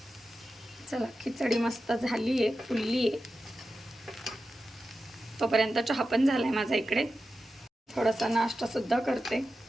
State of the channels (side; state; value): both; normal; correlation 0.92